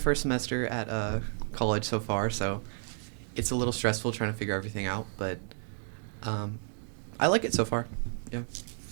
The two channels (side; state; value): left; silent; 57 dB below the other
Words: semester at college so far, so it's a little stressful trying to figure everything out, but um, I like it so far. Yeah.